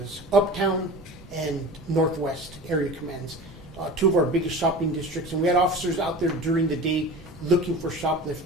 Uptown and Northwest area commands, two of our biggest shopping districts. And we had officers out there during the day looking for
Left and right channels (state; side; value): normal; both; correlation 0.35